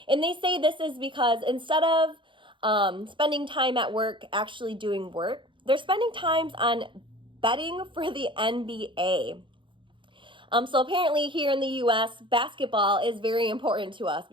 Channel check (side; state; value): left; late; 0.24 ms